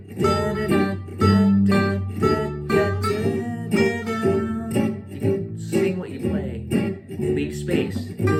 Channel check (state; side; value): identical; both; correlation 1.00